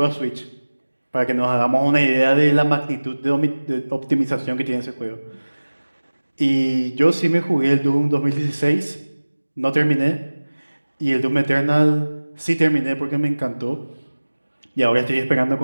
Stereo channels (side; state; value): both; inverted; correlation -1.00